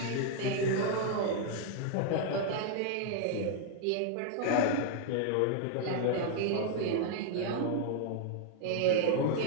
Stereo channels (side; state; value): both; different; correlation 0.00